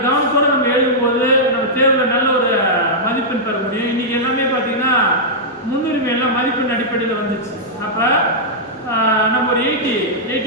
கவனத்தோடு நம்ம எழுதும்போது நம்ம தேர்வில் நல்ல ஒரு மதிப்பெண் பெற முடியும். இன்றைக்கி எல்லாமே பார்த்திங்கன்னா முன்னுரிமை எல்லாம் மதிப்பெண் அடிப்படையில் வந்துச்சு. அப்போ நம்ம ஒரு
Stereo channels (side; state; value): both; normal; correlation -0.10